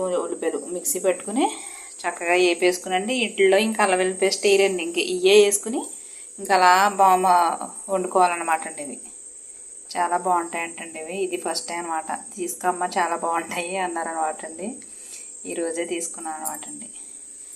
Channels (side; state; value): both; identical; correlation 1.00